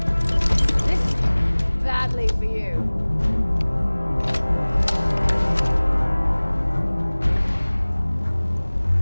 This is badly for you.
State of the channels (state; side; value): inverted; both; correlation -1.00